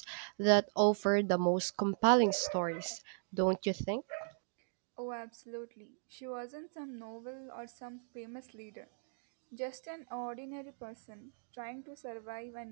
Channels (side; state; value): left; silent; digital silence